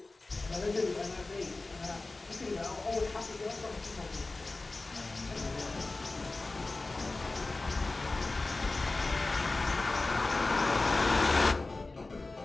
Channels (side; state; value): right; quieter; 3.3 dB